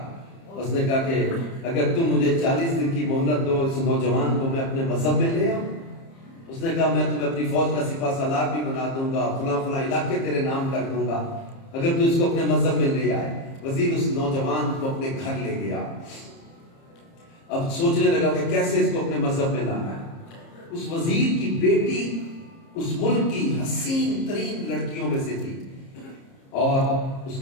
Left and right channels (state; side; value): late; right; 30 ms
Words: उसने कहा कि अगर तुम मुझे 40 दिन की मोहलत दो, इस नौजवान को मैं अपने मजहब में ले आऊं। उसने कहा मैं तुम्हें अपनी फौज का सिपा सालार भी बना दूंगा, फला फला इलाके तेरे नाम कर दूंगा, अगर तू इसको अपने मजहब में ले आए। वजीर उस नौजवान को अपने घर ले गया। अब सोचने लगा कि कैसे इसको अपने मजहब में लाना है। उस वजीर की बेटी उस मुल्क की हसीन तरीन लड़कियों में से थी और